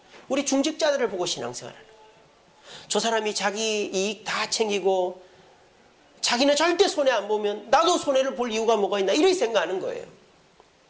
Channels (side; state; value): both; identical; correlation 1.00